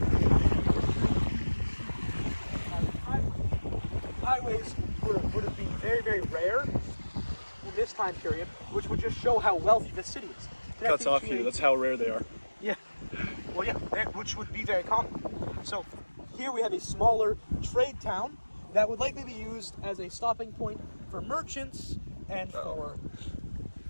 highways would have been very, very rare in this time period, which would just show how wealthy this city is. Cuts off here, that's how rare they are. Yeah. Well, yeah, which would be very common. So here we have a smaller trade town that would likely be used as a stopping point for merchants and for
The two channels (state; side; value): inverted; both; correlation -1.00